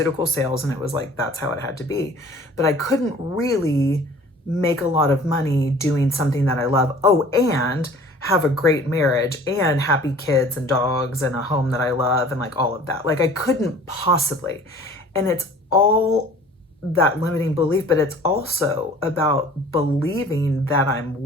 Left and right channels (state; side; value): normal; both; correlation 0.48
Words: sales, and it was that's how it had to be. But I couldn't really make a lot of money doing something that I love. Oh, and have a great marriage and happy kids and dogs and a home that I love and all of that. I couldn't possibly. And it's all that limiting belief, but it's also about believing that I'm